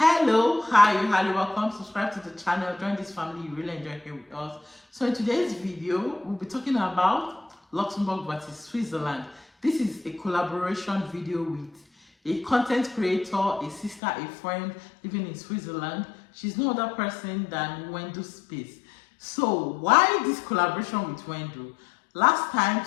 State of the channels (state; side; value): drops out; right; at 14.0 s